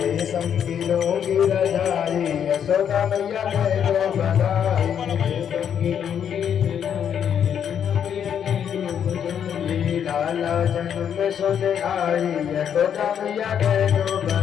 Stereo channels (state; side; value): quieter; right; 8.5 dB